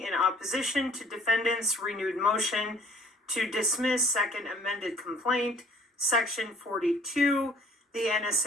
in opposition to defendant's renewed motion to dismiss second amended complaint, section 42, the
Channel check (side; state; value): both; normal; correlation 0.57